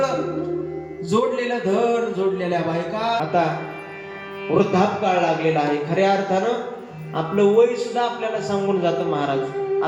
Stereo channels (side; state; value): both; identical; correlation 1.00